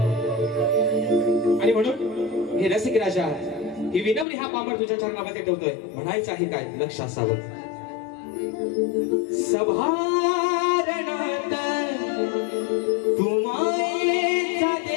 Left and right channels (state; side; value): drops out; right; at 4.2 s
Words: आणि म्हणून हे रसिक राजा ही विनम्र हा पामर तुझ्या चरणामध्ये ठेवतोय. म्हणायचं आहे काय लक्ष असावं. सभारणात तुम्हाचा